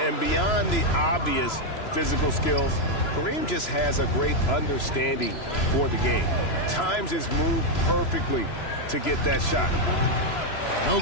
And beyond the obvious physical skills, Kareem just has a great understanding for the game. Times his move perfectly to get that shot. No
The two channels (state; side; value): late; right; 3.0 ms